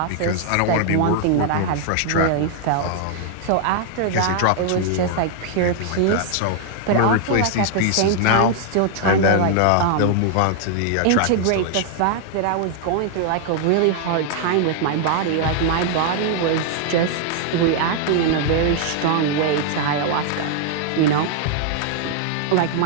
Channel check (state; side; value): different; both; correlation 0.00